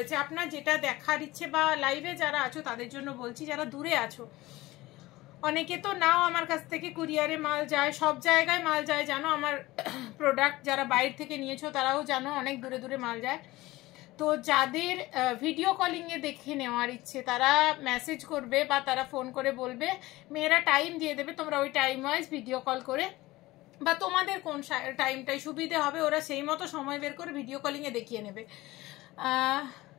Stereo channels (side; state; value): right; quieter; 18.9 dB